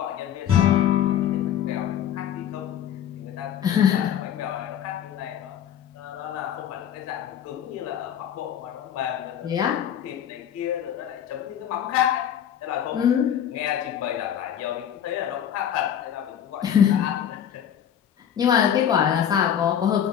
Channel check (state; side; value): quieter; right; 9.6 dB